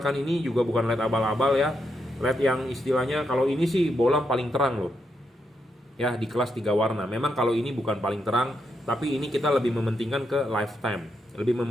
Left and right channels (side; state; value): both; normal; correlation 0.81